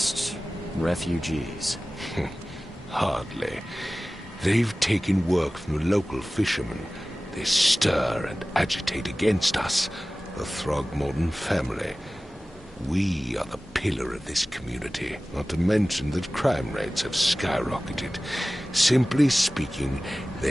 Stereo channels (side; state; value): both; normal; correlation 0.97